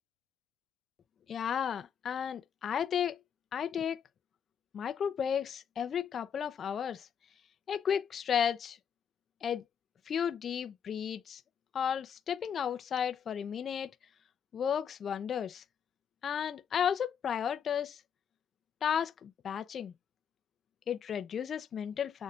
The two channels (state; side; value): quieter; right; 7.9 dB